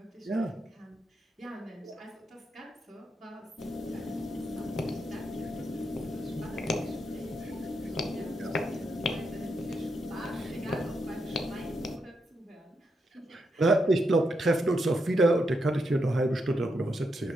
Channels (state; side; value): normal; both; correlation 0.82